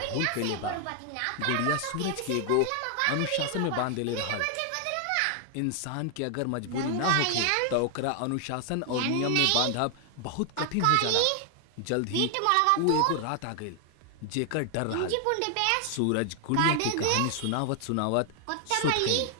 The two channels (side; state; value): both; different; correlation 0.00